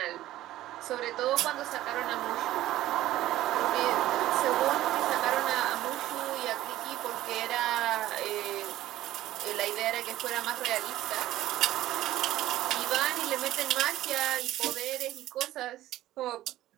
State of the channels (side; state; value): left; quieter; 14.6 dB